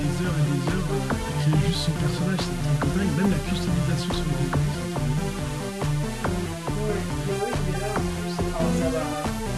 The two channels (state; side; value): identical; both; correlation 1.00